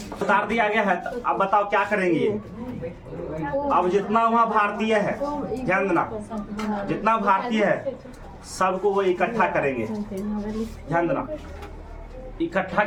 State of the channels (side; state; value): both; identical; correlation 1.00